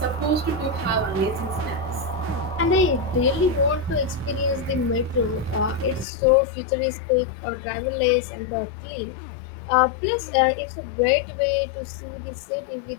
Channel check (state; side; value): drops out; right; at 6.1 s